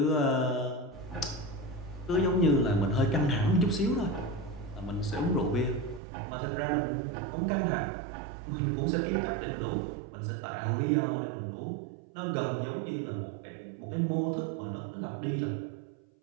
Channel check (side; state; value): left; drops out; at 6.0 s